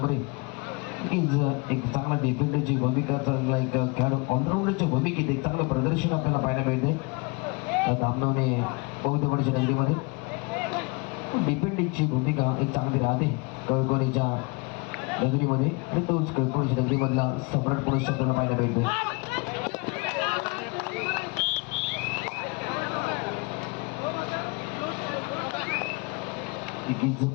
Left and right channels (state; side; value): quieter; right; 29.4 dB